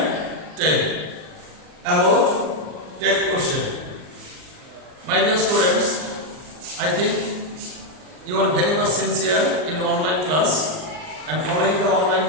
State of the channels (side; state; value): left; late; 39 ms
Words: 10 about tech question. My dear students, I think you are very much sincere in online class and following the online